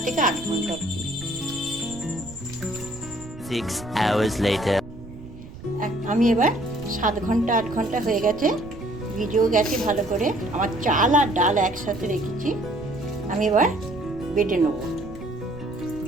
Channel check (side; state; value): right; noise; rumble, 15 dB below the sound